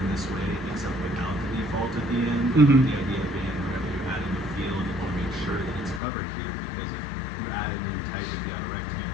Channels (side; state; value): right; drops out; at 6.0 s